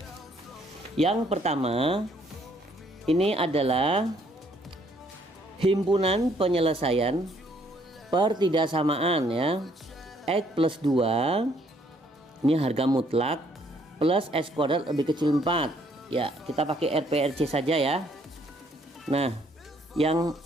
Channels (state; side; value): normal; both; correlation 0.66